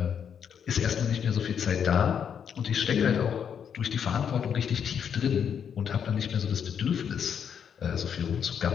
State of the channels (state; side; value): quieter; right; 7.8 dB